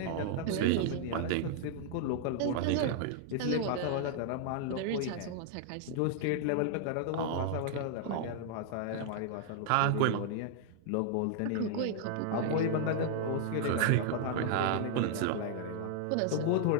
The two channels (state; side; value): different; both; correlation -0.01